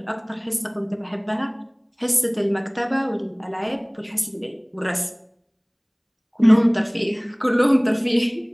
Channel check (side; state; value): both; identical; correlation 1.00